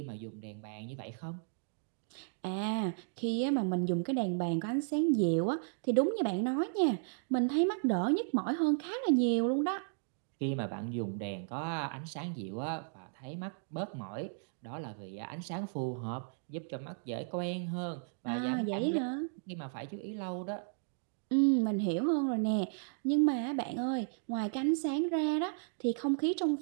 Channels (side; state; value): left; silent; digital silence